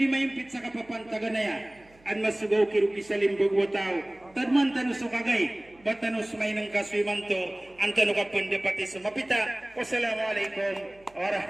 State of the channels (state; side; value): noise; right; hum, 29 dB below the sound